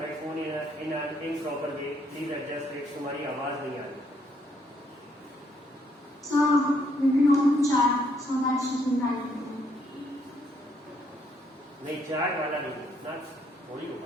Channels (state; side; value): normal; both; correlation 0.70